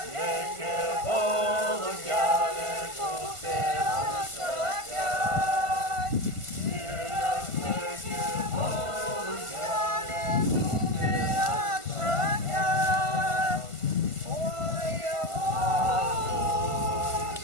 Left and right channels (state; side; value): late; left; 1.5 ms